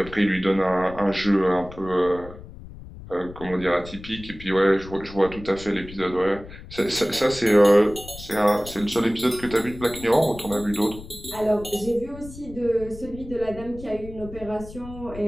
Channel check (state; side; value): noise; left; rumble, 15 dB below the sound